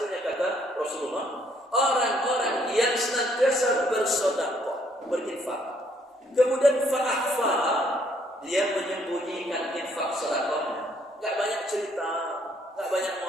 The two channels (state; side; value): normal; both; correlation 0.67